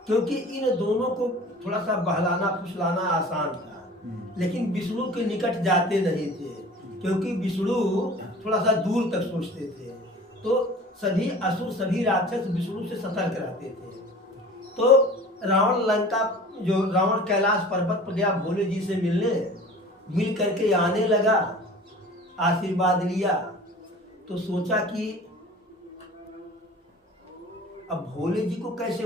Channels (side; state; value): both; normal; correlation 0.42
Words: क्योंकि इन दोनों को थोड़ा सा बहलाना फुसलाना आसान था, लेकिन विष्णु के निकट जाते नहीं थे, क्योंकि विष्णु थोड़ा सा दूर तक सोचते थे। तो सभी असुर, सभी राक्षस विष्णु से सतर्क रहते थे। तो रावण कैलाश पर्वत पर गया भोले जी से मिलने, मिल करके आने लगा, आशीर्वाद लिया। तो सोचा कि अब भोले जी को कैसे